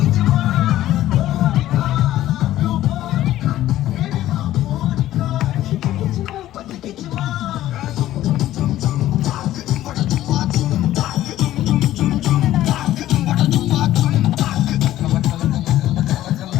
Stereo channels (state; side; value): quieter; right; 13.9 dB